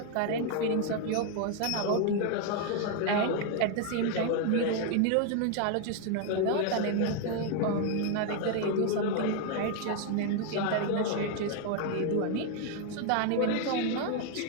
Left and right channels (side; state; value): both; different; correlation 0.01